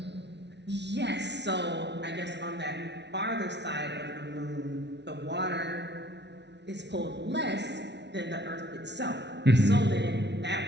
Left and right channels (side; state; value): left; late; 0.50 ms